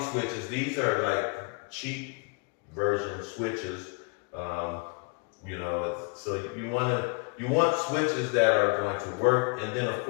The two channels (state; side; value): quieter; right; 33.8 dB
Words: switches. These are like cheap version switches. You know, so you want switches that are going to work. And then of